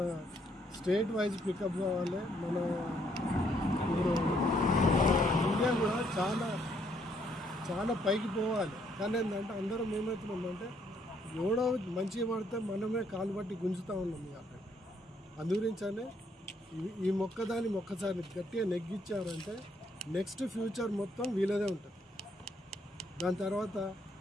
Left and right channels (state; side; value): normal; both; correlation 0.70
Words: స్టేట్ వైజ్ పికప్ కావాలి. మన ఇప్పుడు ఇండియా కూడా చాలా చాలా పైకి పోవాలి. కానీ ఏంటంటే అందరం ఏమవుతున్నామంటే ఎవడో మంచిగా పడితే మనమే కాలు పట్టి గుంజుతూ ఉన్నాం. అక్కడ అందుగురించనే ఈ మొక్కదాన్ని ఒక్కసారి గట్టిగా నెగ్గించారంటే నెక్స్ట్ ఫ్యూచర్ మొత్తం వీళ్ళదే ఉంటుంది. దాని